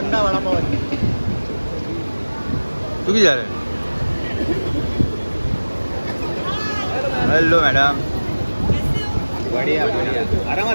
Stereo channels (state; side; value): inverted; both; correlation -1.00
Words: वडापाव तू किती झालं? Hello madam. बढिया बढिया